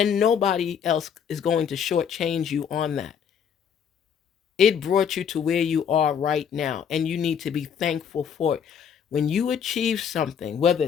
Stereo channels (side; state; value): right; quieter; 7.6 dB